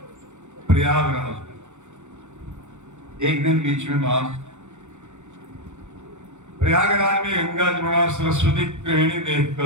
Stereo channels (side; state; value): left; late; 0.84 ms